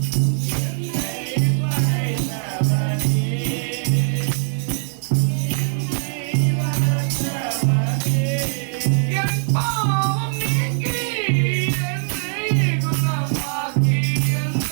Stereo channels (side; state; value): left; silent; 62 dB below the other